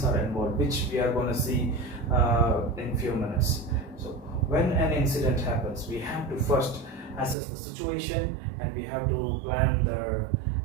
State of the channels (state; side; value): drops out; left; at 7.4 s